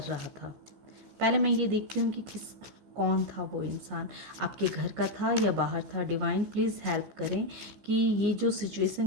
रहा था। पहले मैं ये देखती हूँ कि कौन था वो इंसान, आपके घर का था या बाहर था। डिवाइन प्लीज़ हेल्प करें कि ये जो सिचुएशन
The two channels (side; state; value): left; late; 14 ms